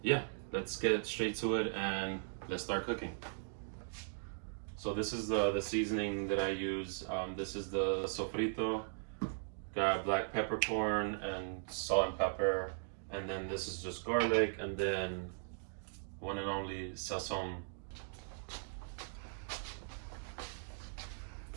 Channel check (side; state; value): left; silent; digital silence